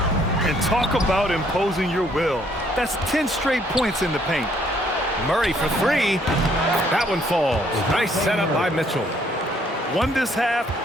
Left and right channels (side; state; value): both; normal; correlation 0.66